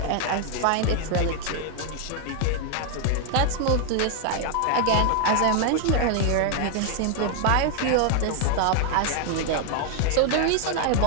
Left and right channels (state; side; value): different; both; correlation 0.00